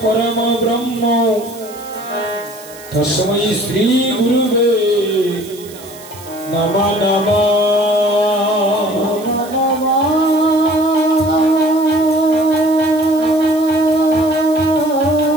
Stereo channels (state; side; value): noise; right; hiss, 19 dB below the sound